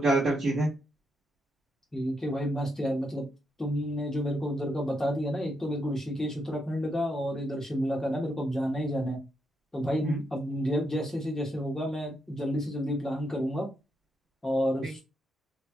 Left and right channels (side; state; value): both; normal; correlation 0.81